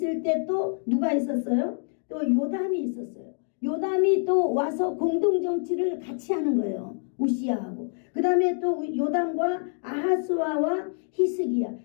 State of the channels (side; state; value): right; silent; 56 dB below the other